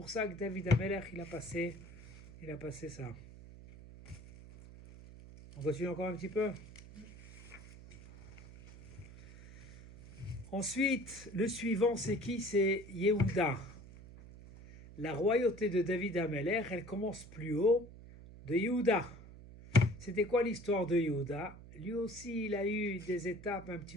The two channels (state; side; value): noise; right; hum, 17 dB below the sound